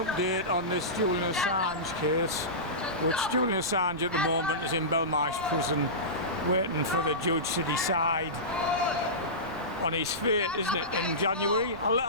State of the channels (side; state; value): right; noise; rumble, 17 dB below the sound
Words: update on this Julian Assange case, which Julian Assange at the moment is in Belmarsh prison waiting for the judge to decide on his fate, isn't it, in January?